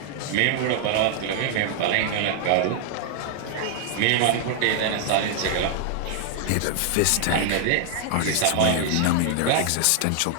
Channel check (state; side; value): different; both; correlation 0.00